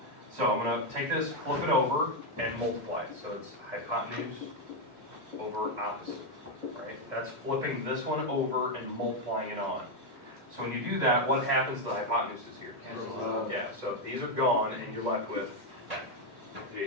So I'm going to take this, flip it over, and multiply it. So it's hypotenuse over opposite, right? That's flipping this one over and multiplying it on. So when you do that, what happens to the hypotenuse is here? Yeah, so these are gone, and you're left with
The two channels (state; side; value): late; left; 2.0 ms